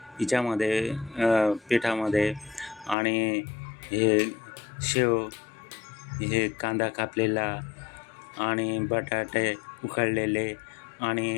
हिच्यामध्ये पिठामध्ये आणि हे शेव, हे कांदा कापलेला आणि बटाटे उकळलेले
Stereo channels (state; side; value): drops out; right; at 3.0 s